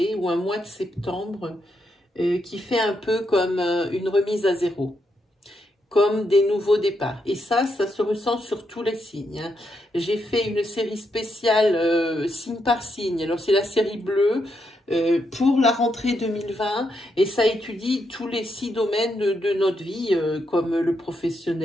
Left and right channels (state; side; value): normal; both; correlation 0.81